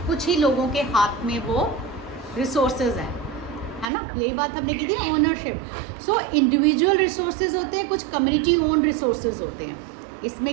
कुछ ही लोगों के हाथ में वो रिसोर्सेज हैं, है ना, यही बात हमने की थी ओनरशिप। सो इंडिविजुअल रिसोर्सेज होते हैं, कुछ कम्युनिटी ओन रिसोर्सेज होते हैं।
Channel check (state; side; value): drops out; left; at 3.9 s